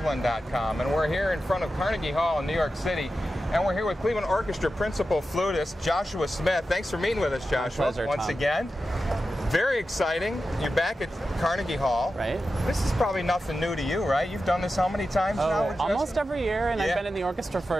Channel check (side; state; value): both; normal; correlation 0.92